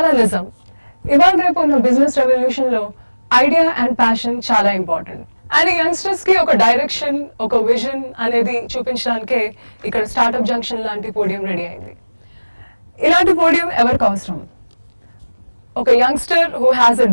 నిజం. ఇవాళ రేపు ఉన్న బిజినెస్ రెవల్యూషన్ లో ఐడియా అండ్ ప్యాషన్ చాలా ఇంపార్టెంట్. అండ్ యంగ్స్టర్స్ కి ఒక డైరెక్షన్, ఒక విజన్ అనేది చూపించడానికే ఇక్కడ స్టార్టప్ జంక్షన్ లాంటి పోడియం రెడీ అయింది. ఇలాంటి పోడియం ఎవరికి అవసరం? ఒక youngster who has a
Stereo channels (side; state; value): both; inverted; correlation -1.00